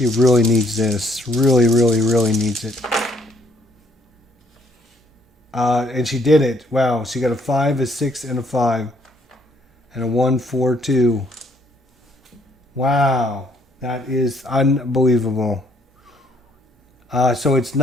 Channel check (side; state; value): both; normal; correlation 0.67